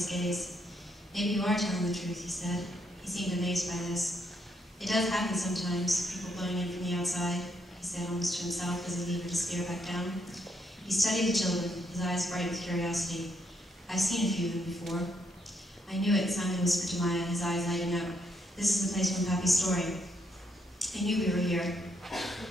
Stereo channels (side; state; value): both; normal; correlation 0.75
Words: gaze. Maybe you are telling the truth, he said. He seemed amazed by this. It does happen sometimes, people blowing in from the outside, he said almost to himself as he levered his spear back down. He studied the children, his eyes bright with curiosity. I've seen a few of them before. I knew it, Simon whispered to Maya, his eyes lighting up. This is the place from Pappy's story. I knew we were here.